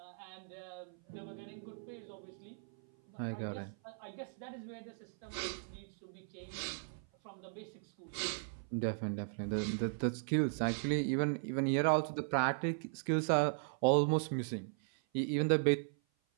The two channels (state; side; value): silent; left; 53 dB below the other